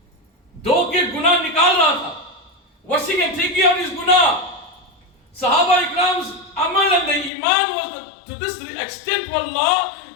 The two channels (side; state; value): right; drops out; at 7.3 s